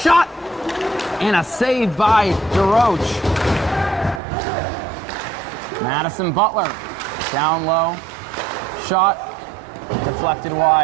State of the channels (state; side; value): drops out; left; at 4.2 s